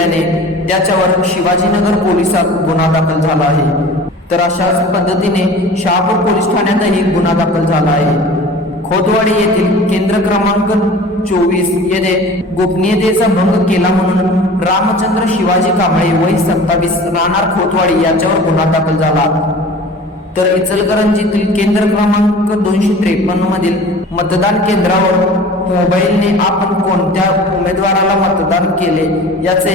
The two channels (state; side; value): normal; both; correlation 0.42